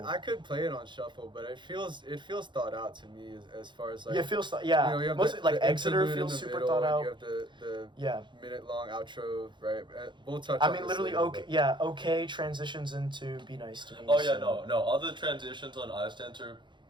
I could play it on shuffle, but it feels thought out to me as far as like it feels you know, mostly like Exeter feels super thought out. You have the minute long outro, right? We'll touch. I mean, literally, okay transitions into Be Nice to Me. Oh yeah, no, all the transitions on Ice Dancer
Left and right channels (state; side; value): late; left; 0.23 ms